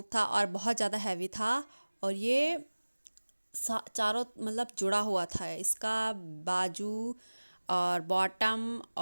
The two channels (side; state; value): both; inverted; correlation -1.00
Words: था और बहुत ज़्यादा हैवी था। और ये चारों मतलब जुड़ा हुआ था इसका, बाजू और बॉटम